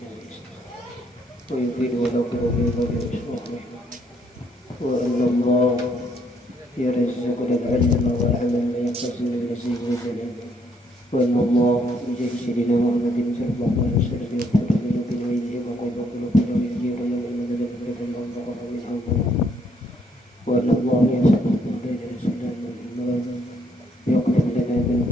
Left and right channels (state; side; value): normal; both; correlation 0.70